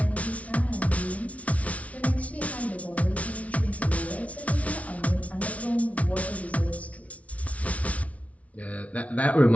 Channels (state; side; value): late; right; 0.066 ms